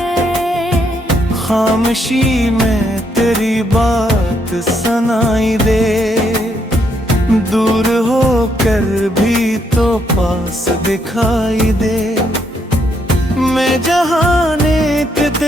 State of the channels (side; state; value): both; normal; correlation 0.74